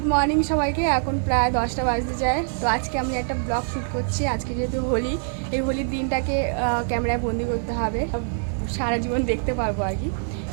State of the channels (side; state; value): left; silent; digital silence